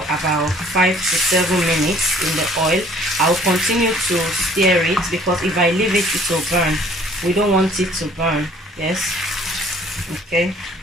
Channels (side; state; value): both; normal; correlation 0.56